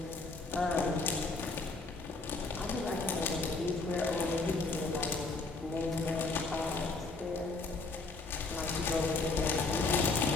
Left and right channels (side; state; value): right; quieter; 3.7 dB